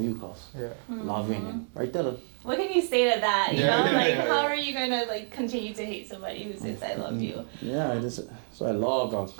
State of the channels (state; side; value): silent; left; digital silence